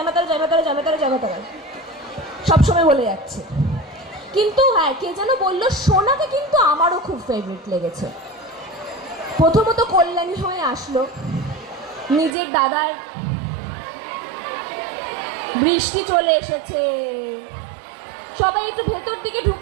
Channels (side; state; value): left; drops out; at 12.4 s